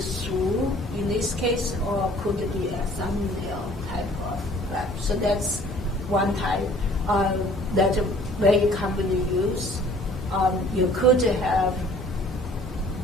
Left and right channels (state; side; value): normal; both; correlation 0.53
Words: through in this case, or could be a thumbnail type of crack. So that's one type that very commonly used. You could have